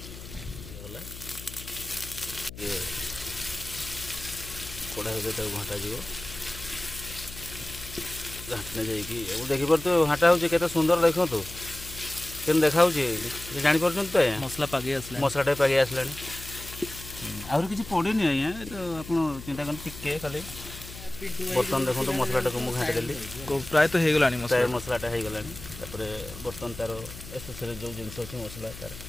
ଗଲା ଇଏ କଢ଼ା ଭିତରେ ତାକୁ ଘାଣ୍ଟାଯିବ ଘାଣ୍ଟିଲେ ଯାଇକି ଆଉ ଦେଖିପାରୁଥିବେ ଘାଣ୍ଟା ହେଉଛି କେତେ ସୁନ୍ଦର ଦେଖନ୍ତୁ କେମିତି ଦେଖାହେଉଛି ଜାଣିପାରୁଛନ୍ତି ତ ଆଜ୍ଞା ମସଲା ପାଗେଇ ଆସିଲା ମସଲାଟା ପାଗେଇ ଆସିଲାଣି ଆହୁରି କିଛି ପଡ଼ିନି ଆଜ୍ଞା ତ ଆପଣ ଚିନ୍ତା କରନ୍ତୁ ଟିକେ ଖାଲି ବର୍ତ୍ତମାନ ଦେଖନ୍ତୁ ମସଲାଟାକୁ ମୁଁ ଘାଣ୍ଟି ଦେଲି ପ୍ରାୟତଃ ହେଇଗଲାଣି ପ୍ରାୟ ମସଲାଟା ହେଇଗଲାଣି ତାପରେ ବର୍ତ୍ତମାନ ତାର ଏସେସରି ଯେଉଁ ଜିନିଷ ଅଛି ମସଲା ତାର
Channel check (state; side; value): noise; left; hum, 13 dB below the sound